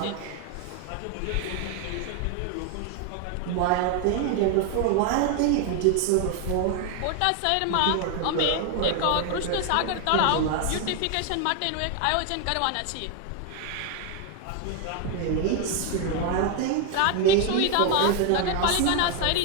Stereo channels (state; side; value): different; both; correlation 0.01